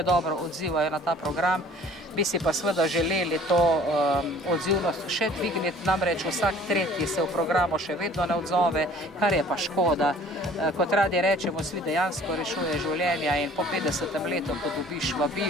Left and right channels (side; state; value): both; normal; correlation 0.51